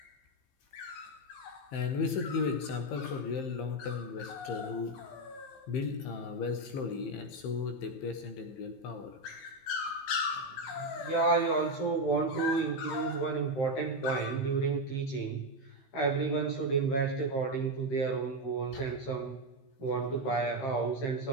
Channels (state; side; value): late; right; 15 ms